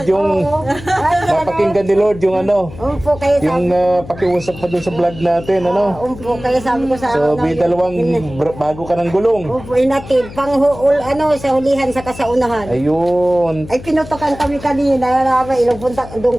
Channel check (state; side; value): noise; left; hum, 15 dB below the sound